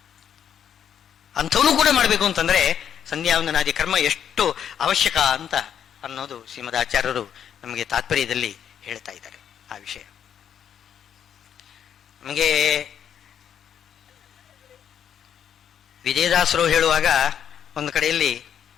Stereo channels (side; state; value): right; quieter; 8.9 dB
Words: ಅಂಥವನು ಕೂಡ ಮಾಡಬೇಕು ಅಂತಂದ್ರೆ ಸಂಧ್ಯಾ ವಂದನಾದಿ ಕರ್ಮ ಎಷ್ಟು ಅವಶ್ಯಕ ಅಂತ ಅನ್ನೋದು ಶ್ರೀಮದ್ ಆಚಾರ್ಯರು ನಮಗೆ ತಾತ್ಪರ್ಯದಲ್ಲಿ ಹೇಳ್ತಾ ಇದ್ದಾರೆ. ಆ ವಿಷಯ ನಮಗೆ ವಿಜಯದಾಸರು ಹೇಳುವಾಗ ಒಂದು ಕಡೆಯಲ್ಲಿ